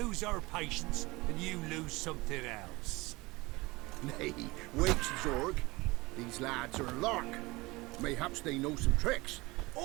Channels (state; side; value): quieter; left; 22.5 dB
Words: our patience and you lose something else. Nay, wait, Zorg. These lads are a lark. Mayhaps they know some tricks.